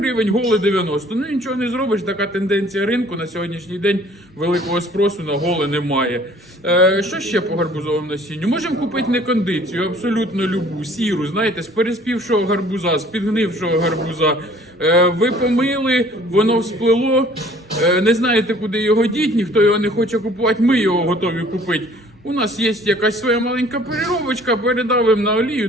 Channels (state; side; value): normal; both; correlation 0.54